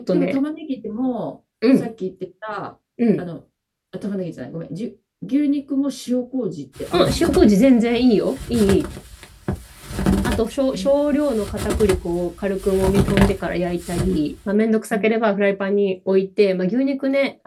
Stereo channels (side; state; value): both; identical; correlation 1.00